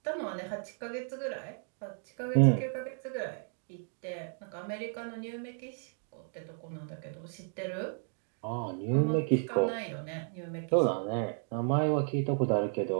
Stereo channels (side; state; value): left; silent; 56 dB below the other